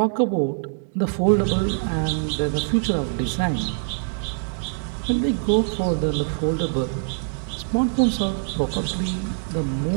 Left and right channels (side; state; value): left; silent; digital silence